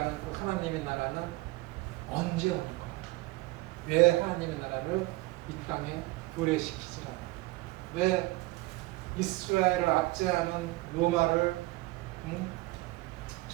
그 하나님의 나라는 언제 오는 거야? 왜 하나님의 나라를 이 땅에 도래시키지 않아? 왜 이스라엘을 압제하는 로마를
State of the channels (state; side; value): quieter; left; 20.7 dB